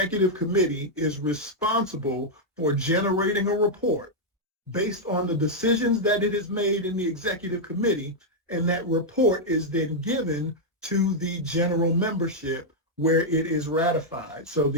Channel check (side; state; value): both; normal; correlation -0.03